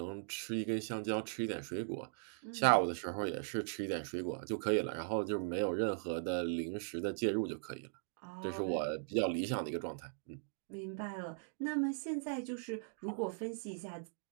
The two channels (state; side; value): silent; left; digital silence